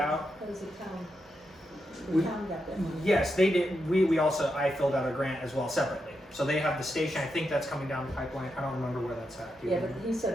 That was the town. We- The town got that money. Yes, they did. I filled out a grant as well separately. So they have the station. I think that's coming down the pipeline. I don't remember where that's at. Do you Yeah, but remember? he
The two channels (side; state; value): both; normal; correlation 0.85